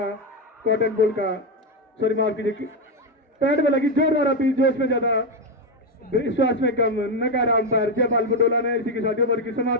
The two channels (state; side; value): normal; both; correlation 0.08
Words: कॉटन बॉल का, सॉरी माफ कीजिए, पैड में लगी जोरदार अपील, जोश में ज्यादा विश्वास में कम, नकारा अंपायर जयपाल बडोला ने। इसी के साथ ओवर की